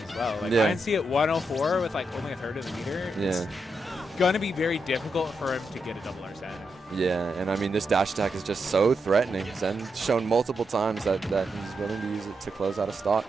as well. Like, Yeah. INC at 104 with, like, only a third of the meter. It's Yeah. going to be very difficult for him to get a double Arsene. Yeah, and I mean, this dash attack is just so threatening. Zen's shown multiple times that he's willing to use it to close out a stock.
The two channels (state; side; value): normal; both; correlation 0.84